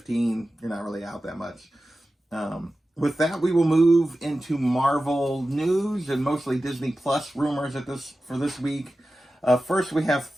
you're not really out that much. With that, we will move into Marvel news and mostly Disney Plus rumors for this week. First, we have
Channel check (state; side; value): normal; both; correlation 0.94